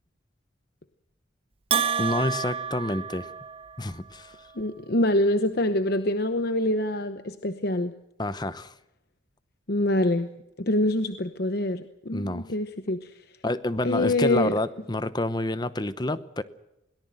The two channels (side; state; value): both; normal; correlation 0.32